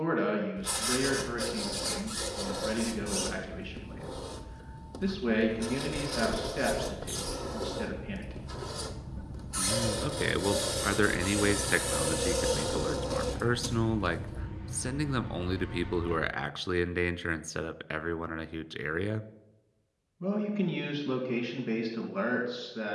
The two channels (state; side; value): identical; both; correlation 1.00